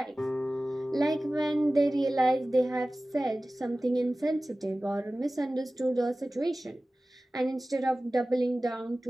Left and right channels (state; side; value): normal; both; correlation 0.97